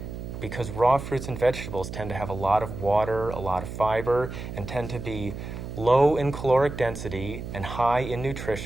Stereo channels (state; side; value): noise; right; hum, 8 dB below the sound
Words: because raw fruits and vegetables tend to have a lot of water, a lot of fiber, and tend to be low in caloric density and high in